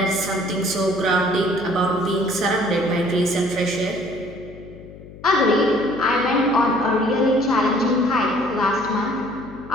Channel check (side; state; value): left; noise; hum, 18 dB below the sound